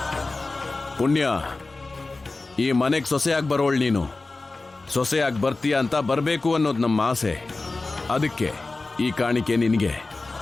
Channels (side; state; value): right; quieter; 3.4 dB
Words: ಪುಣ್ಯ, ಈ ಮನೆಗೆ ಸೊಸೆಯಾಗಿ ಬರೋಳು ನೀನು. ಸೊಸೆಯಾಗಿ ಬರ್ತೀಯ ಅಂತ ಬರಬೇಕು ಅನ್ನೋದು ನಮ್ಮ ಆಸೆ. ಅದಕ್ಕೆ ಈ ಕಾಣಿಕೆ ನಿನಗೆ.